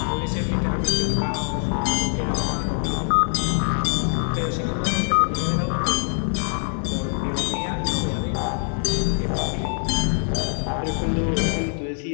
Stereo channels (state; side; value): silent; right; 63 dB below the other